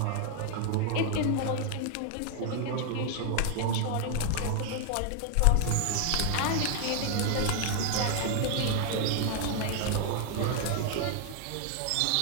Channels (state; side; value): different; both; correlation 0.00